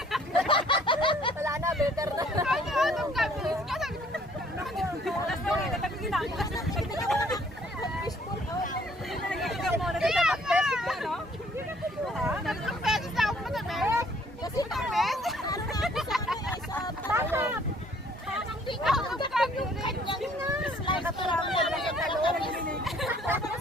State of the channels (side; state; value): both; normal; correlation 0.60